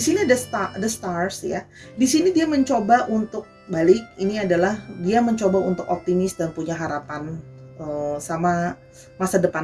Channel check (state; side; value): identical; both; correlation 1.00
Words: sini the stars ya. Di sini dia mencoba untuk balik. Ini adalah dia mencoba untuk optimis dan punya harapan sama masa